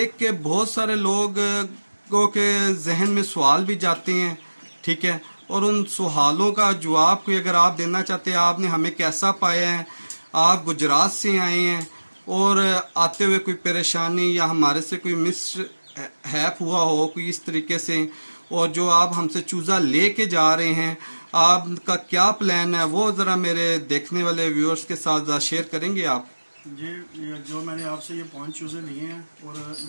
के बहुत सारे लोगों के जहन में सवाल भी जाते हैं, ठीक है, और उन सवालों का जवाब कोई अगर आप देना चाहते हैं, आपने हमें कैसा पाया है, आप गुजरात से आए हैं और आते हुए कोई परेशानी या हमारे से कोई मिस हैप हुआ हो कोई इस तरीके से, और जो आप हमसे चूज़ा ले के जा रहे हैं, आपका क्या प्लान है, वो ज़रा मेरे देखने वाले व्यूअर्स के साथ शेयर करेंगे आप? जी, जो मैंने आपसे ये 5 चूज़े लिए हैं, और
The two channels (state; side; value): inverted; both; correlation -1.00